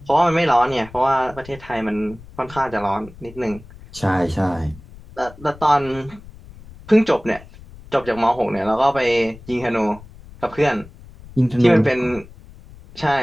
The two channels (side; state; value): left; noise; rumble, 20 dB below the sound